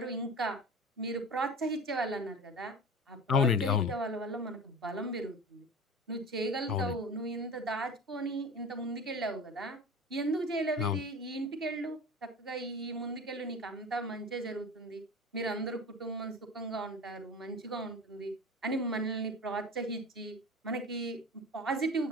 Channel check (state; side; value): normal; both; correlation 0.34